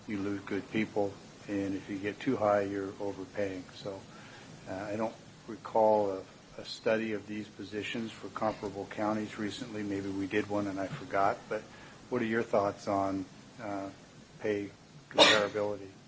you lose good people, and if you get too high, you're overpaying. So I don't recall a study of these positions for comparable counties recently. Maybe we did one and I forgot, but what are your thoughts on pay comparability?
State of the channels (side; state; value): both; identical; correlation 1.00